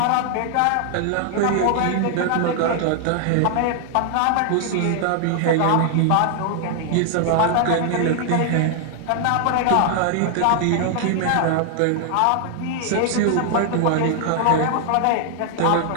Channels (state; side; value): different; both; correlation 0.00